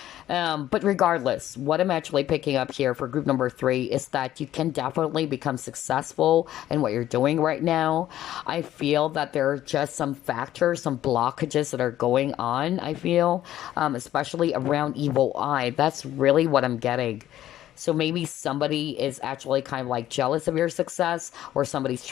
But regardless, what I'm actually picking up here for group number three is that you can definitely become successful in what you're doing right now. I feel that there are just some factors, some blockages that are going on, I feel, especially around evil eye. That's really what I'm getting. So maybe somebody is actually kind of like jealous of your success, or somebody's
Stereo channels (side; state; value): right; quieter; 12.9 dB